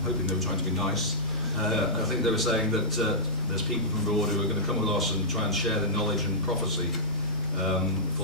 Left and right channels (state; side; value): normal; both; correlation -0.15